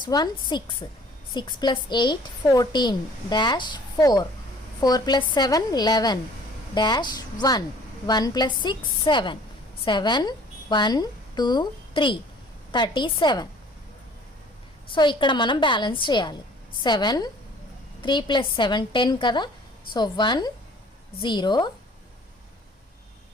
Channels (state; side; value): normal; both; correlation 0.53